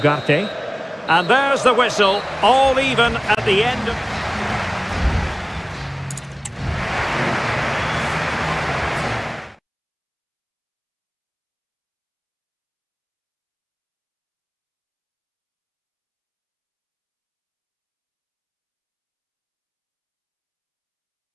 And there's the whistle, all even at the end of...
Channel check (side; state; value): both; identical; correlation 1.00